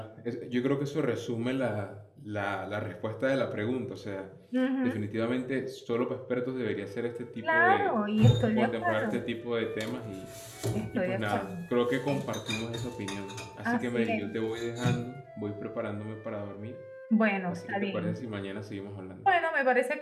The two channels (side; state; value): both; identical; correlation 1.00